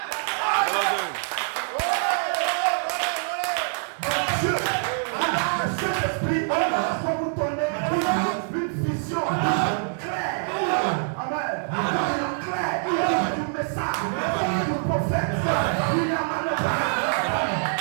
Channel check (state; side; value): silent; left; 62 dB below the other